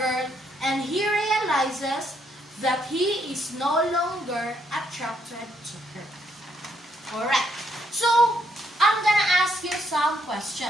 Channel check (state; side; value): normal; both; correlation 0.74